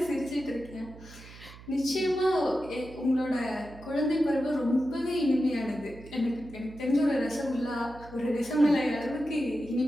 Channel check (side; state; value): right; noise; hum, 18 dB below the sound